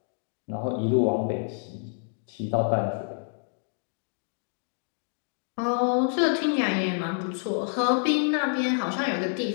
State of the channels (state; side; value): silent; right; 59 dB below the other